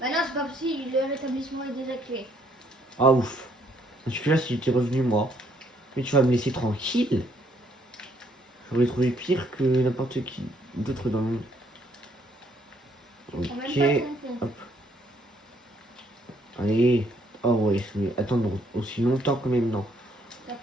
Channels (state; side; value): normal; both; correlation 0.69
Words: non, c'est pas possible, le rétablissement est désactivé. Ah ouf. Parce que là, si j'étais revenu moi. Mais tu vas me laisser tranquille. J'aurais trouvé pire que n'importe qui d'autre dans le monde. Prends même Ok. pas ton pont. Hop. Allez. Oh ouais, je vais attendre aussi longtemps que même non. Ça